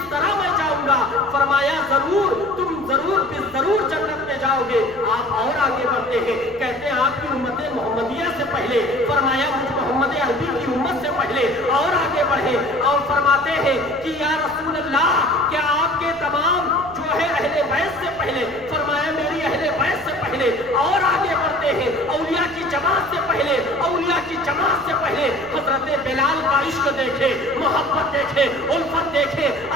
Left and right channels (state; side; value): noise; left; rumble, 23 dB below the sound